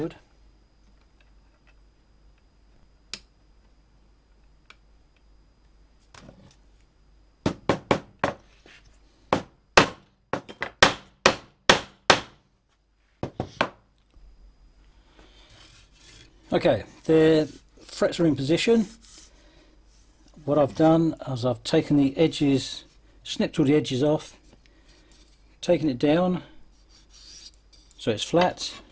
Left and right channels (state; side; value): identical; both; correlation 1.00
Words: Okay, the frets are in position. What I've done is I've taken the edges, snipped all the edges off, taken it down so it's flat,